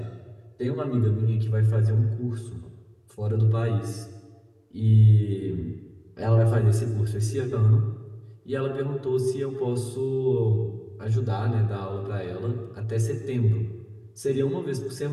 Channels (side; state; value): both; identical; correlation 1.00